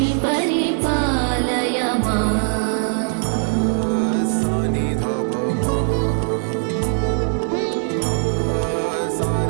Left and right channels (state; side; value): silent; left; 62 dB below the other